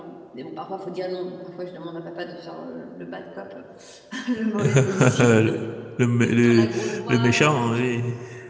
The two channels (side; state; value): both; identical; correlation 1.00